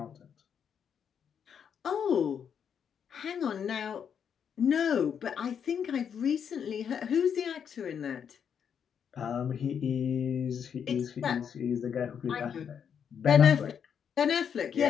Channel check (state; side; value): quieter; right; 7.7 dB